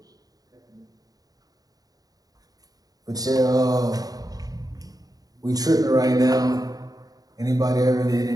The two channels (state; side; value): late; left; 0.18 ms